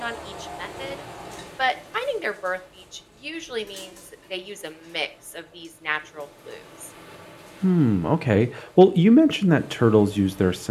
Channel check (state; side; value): identical; both; correlation 1.00